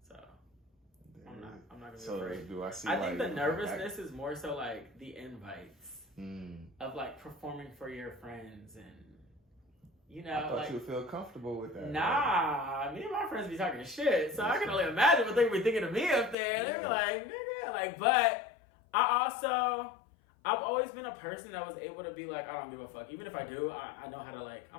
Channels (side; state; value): right; drops out; at 16.4 s